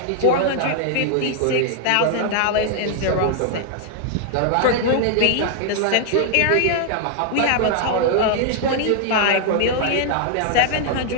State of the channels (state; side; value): different; both; correlation 0.00